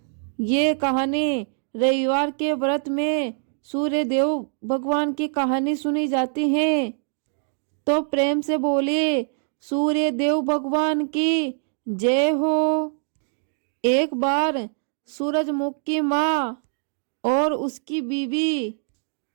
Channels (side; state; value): left; silent; digital silence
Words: ये कहानी रविवार के व्रत में सूर्य देव भगवान की कहानी सुनी जाती है। तो प्रेम से बोले सूर्य देव भगवान की जय हो। एक बार सूरजमुख की माँ और उसकी बीवी